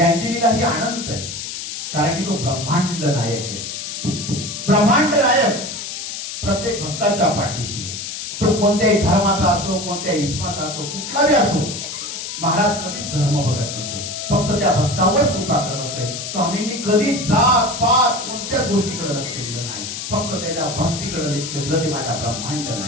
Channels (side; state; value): left; noise; hiss, 7 dB below the sound